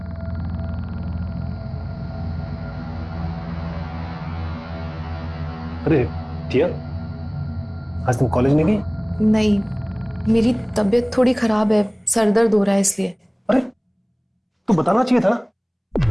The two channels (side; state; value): both; identical; correlation 1.00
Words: अरे दिया, आज तुम कॉलेज नहीं गई? नहीं, मेरी तबीयत थोड़ी खराब है, सर दर्द हो रहा है इसलिए। अरे तू बताना चाहिए था ना।